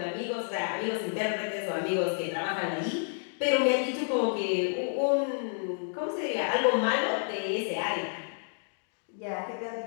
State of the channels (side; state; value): right; silent; digital silence